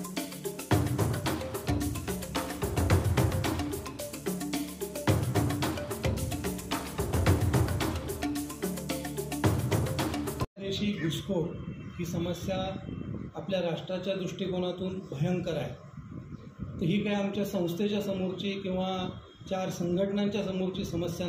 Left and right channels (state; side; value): identical; both; correlation 1.00